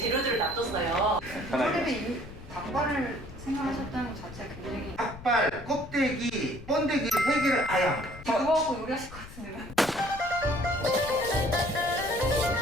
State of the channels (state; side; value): noise; left; rumble, 16 dB below the sound